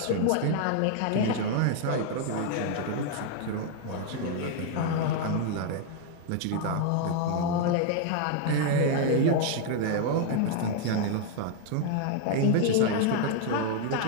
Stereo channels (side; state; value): both; different; correlation 0.00